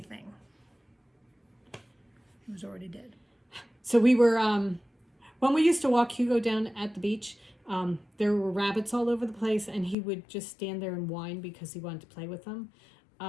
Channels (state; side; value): drops out; right; at 10.0 s